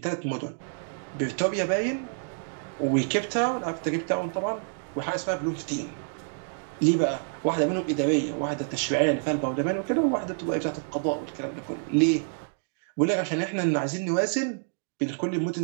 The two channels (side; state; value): left; silent; digital silence